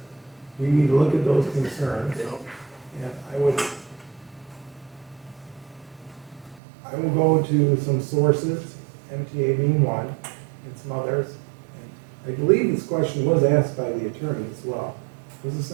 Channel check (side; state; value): left; drops out; at 6.6 s